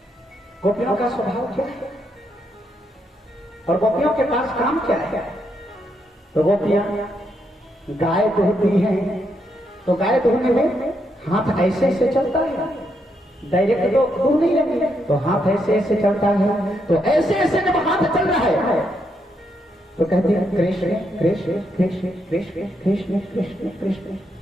गोपियों का स्वभाव क्या है और गोपियों के पास काम क्या है? तो गोपियां गाय दुहती हैं, तो गाय दुहने में हाथ ऐसे ऐसे चलता है, डायरेक्ट तो दूर नहीं लगी, तो हाथ ऐसे ऐसे चलता है। तो ऐसे ऐसे जब हाथ चल रहा है तो कहती है कृष्ण कृष्ण कृष्ण कृष्ण कृष्ण कृष्ण कृष्ण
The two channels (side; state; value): both; normal; correlation 0.79